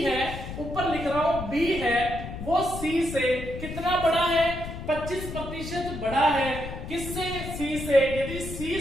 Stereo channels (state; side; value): noise; left; rumble, 8 dB below the sound